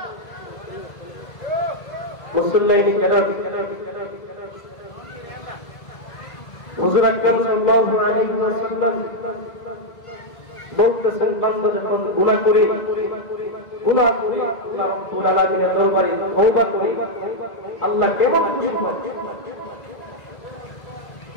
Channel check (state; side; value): late; right; 2.0 ms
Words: মুসল্লিয়ানে কেরাম, হুজুর আকরাম সাল্লাল্লাহু আলাইহি ওয়াসাল্লাম বলতেছেন, বান্দা যখন গুনাহ করে আল্লাহ রাব্বুল আলামিনের দরবারে তওবা করে, আল্লাহ কেমন খুশি হন?